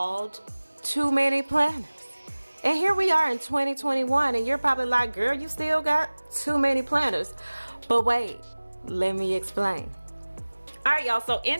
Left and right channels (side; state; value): both; inverted; correlation -1.00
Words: Too Many Planners. And here we are in 2021, and you're probably like, girl, you still got too many planners. But wait, let me explain. All right, y'all, so in